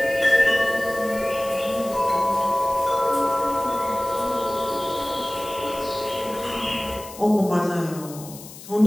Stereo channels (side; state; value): left; noise; hiss, 16 dB below the sound